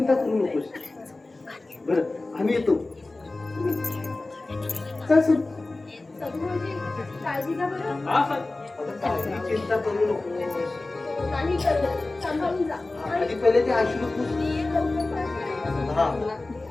करू नकोस. बरं, आम्ही येतो. चल सर. सगळ्यांची काळजी घ्या बरं. हा सर. काही चिंता करू नकोस. नाही करत. सांभाळून जा. आधी पहिले ते अश्रू पुस. हा.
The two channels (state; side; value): quieter; right; 3.1 dB